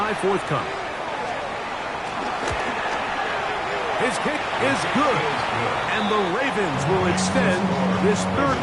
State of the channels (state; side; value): identical; both; correlation 1.00